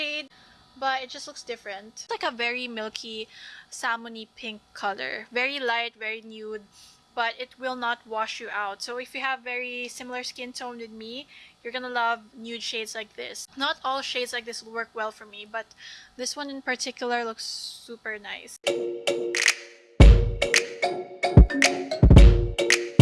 but it just looks different. It's like a very milky, salmony pink color. Very light, very nude. but it will not wash you out. So if you have very similar skin tone with me, you're gonna love nude shades like this. Not all shades like this will work well for me, but this one in particular looks super nice.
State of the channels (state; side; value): identical; both; correlation 1.00